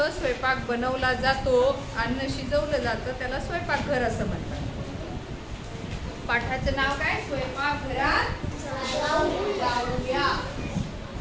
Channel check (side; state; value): both; identical; correlation 1.00